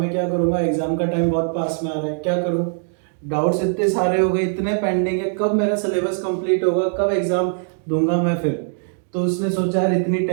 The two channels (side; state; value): left; silent; digital silence